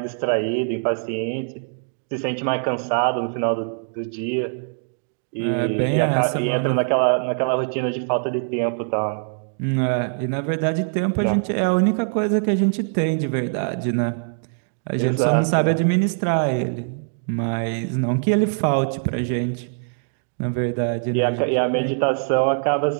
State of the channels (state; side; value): silent; left; digital silence